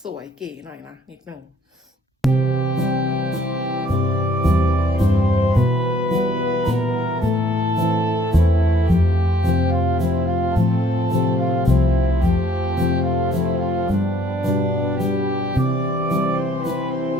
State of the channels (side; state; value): both; normal; correlation 0.61